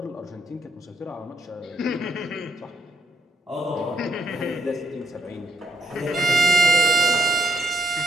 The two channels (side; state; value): both; normal; correlation 0.76